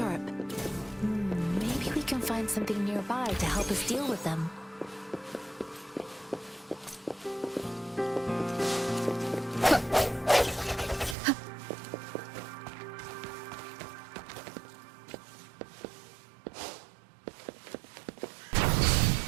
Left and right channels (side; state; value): left; drops out; at 11.2 s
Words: Maybe we can find something nearby to help us deal with them.